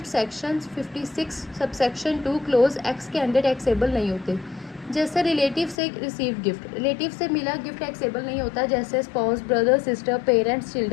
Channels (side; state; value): right; drops out; at 5.8 s